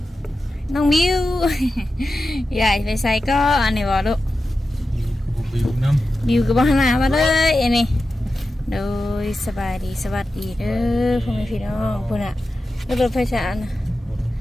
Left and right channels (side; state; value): both; normal; correlation 0.92